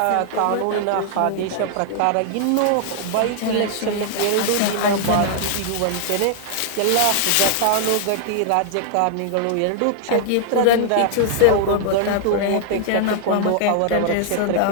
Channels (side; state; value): both; different; correlation -0.01